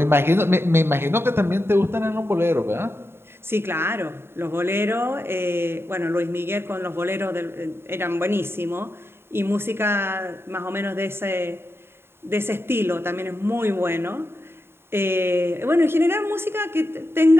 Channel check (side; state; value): left; late; 0.11 ms